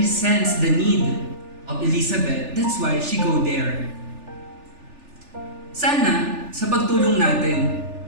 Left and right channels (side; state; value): left; late; 3.4 ms